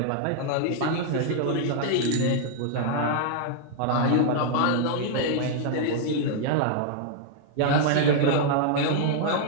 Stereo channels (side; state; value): both; different; correlation -0.01